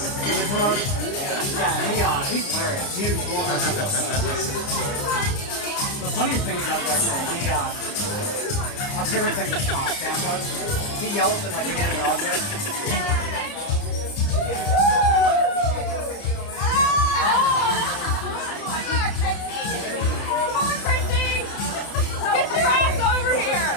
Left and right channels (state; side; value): late; right; 30 ms